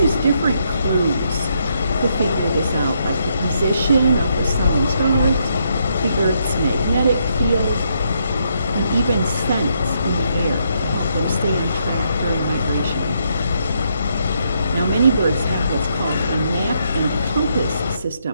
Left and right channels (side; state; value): both; inverted; correlation -0.76